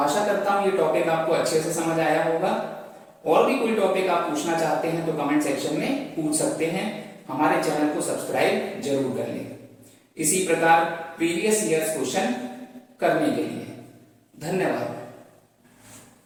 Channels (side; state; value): both; identical; correlation 1.00